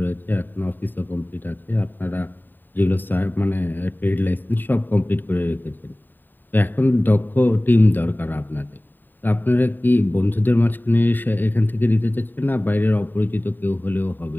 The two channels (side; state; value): right; late; 0.091 ms